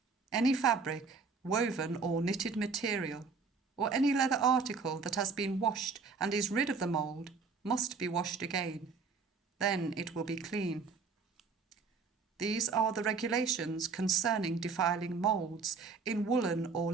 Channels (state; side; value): quieter; left; 4.8 dB